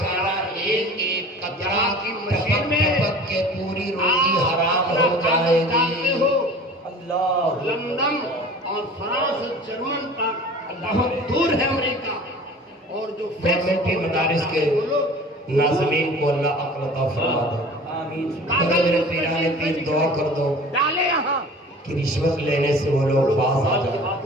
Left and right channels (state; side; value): normal; both; correlation 0.42